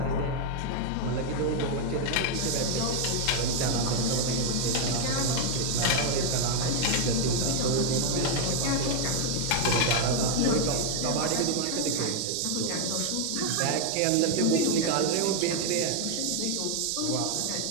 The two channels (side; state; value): both; different; correlation 0.00